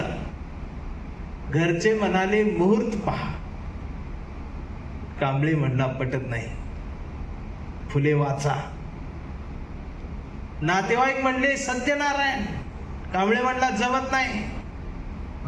घरचे म्हणाले मुहूर्त पहा. कांबळे म्हणला पटत नाही, फुले वाचा. नातेवाईक म्हणले सत्यनारायण. कांबळे म्हणला जमत नाही,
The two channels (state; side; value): identical; both; correlation 1.00